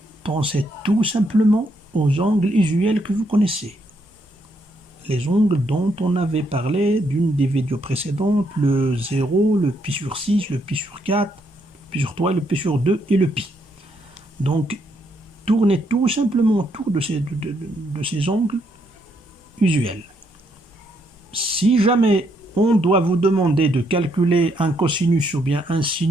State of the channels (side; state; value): both; normal; correlation 0.74